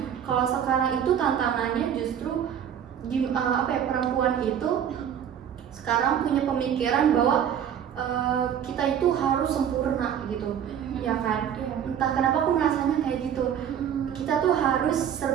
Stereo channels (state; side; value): quieter; left; 9.0 dB